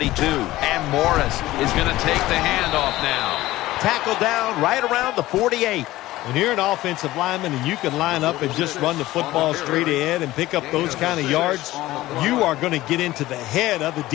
And Morris is going to take the handoff now. Tackled down right around the 48. When you're an offensive lineman and you can line up and just run the football straight ahead and pick up those kind of yards, you are going to get into the head of the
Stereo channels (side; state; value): right; quieter; 16.7 dB